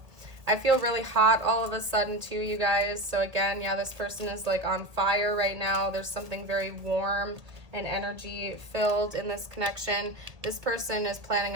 I feel really hot all of a sudden too, you guys. So again, yeah, this person is like on fire right now. There's something very warm and energy filled in this connection. This person is planning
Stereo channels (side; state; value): left; late; 1.6 ms